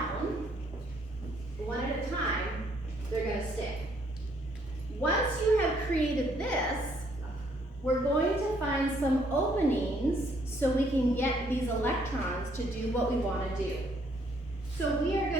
one at a time, they're going to stick. Once you have created this, we're going to find some openings so we can get these electrons to do what we want to do. So we are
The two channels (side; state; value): both; normal; correlation 0.67